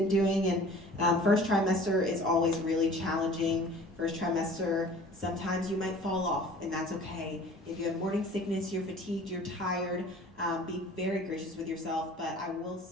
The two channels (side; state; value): both; normal; correlation 0.47